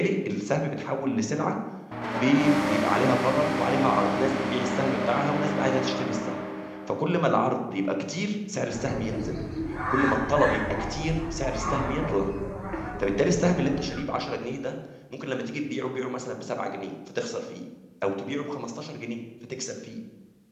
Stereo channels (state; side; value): identical; both; correlation 1.00